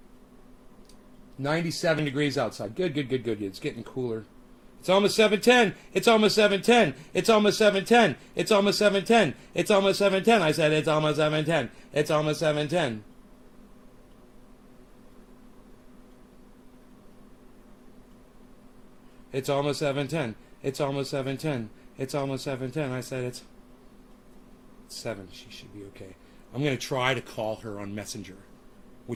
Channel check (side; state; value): both; identical; correlation 1.00